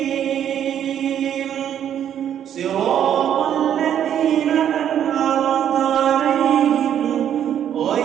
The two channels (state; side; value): quieter; left; 9.8 dB